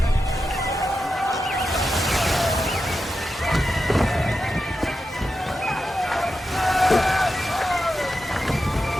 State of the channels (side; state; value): both; normal; correlation 0.89